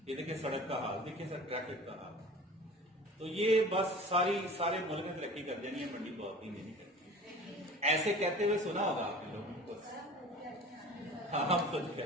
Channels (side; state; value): both; normal; correlation 0.41